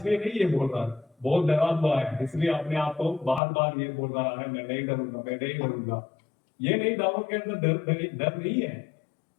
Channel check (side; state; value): right; drops out; at 3.4 s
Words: नहीं ये बोल रहा, बहुत डरा हुआ है, इसलिए अपने आप को बार बार ये बोल रहा है, मैं नहीं डरूंगा, मैं नहीं डरूंगा। ये नहीं, दाऊद के अंदर डर नहीं है,